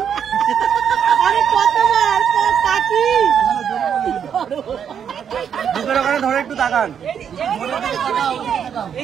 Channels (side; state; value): left; quieter; 8.1 dB